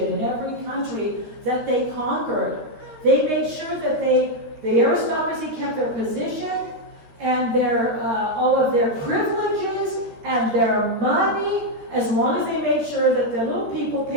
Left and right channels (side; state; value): left; late; 13 ms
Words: in every country that they conquered. They made sure that the aristocracy kept their position and their all of their privileges and their money, as long as they made sure that the little people